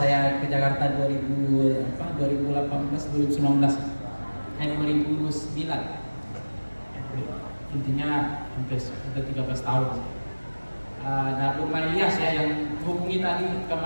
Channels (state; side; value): inverted; both; correlation -1.00